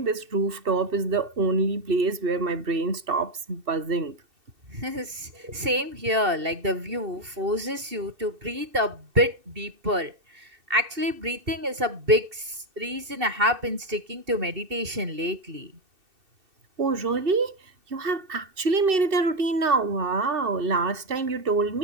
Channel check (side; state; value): left; late; 2.7 ms